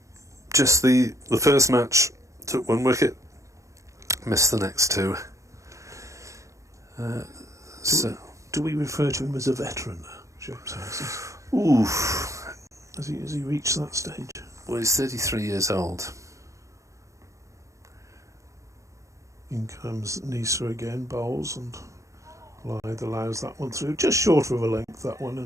just the first match, took one wicket, missed the next two. Do we refer to him as a veteran now, James Harris? Oof. Has he reached that stage? Well, he's 33 years old. In comes Nisa again, bowls, and Lythe allows that one through, just short of a length, that one,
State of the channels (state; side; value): late; left; 0.15 ms